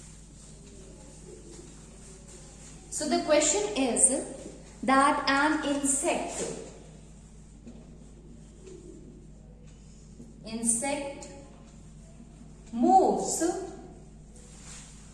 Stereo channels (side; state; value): both; identical; correlation 1.00